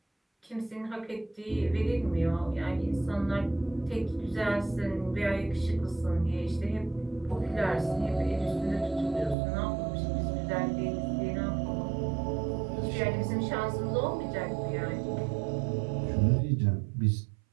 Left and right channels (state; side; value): drops out; left; at 9.3 s